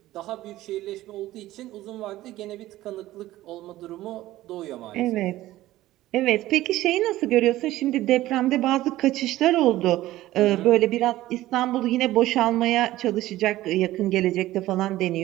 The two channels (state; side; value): quieter; left; 15.8 dB